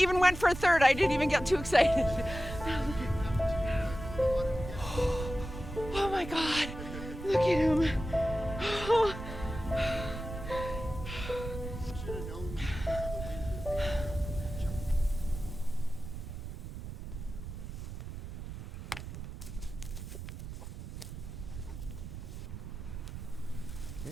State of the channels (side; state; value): right; noise; rumble, 9 dB below the sound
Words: went for a third. I didn't even get too excited. Oh my God, look at him. Oh.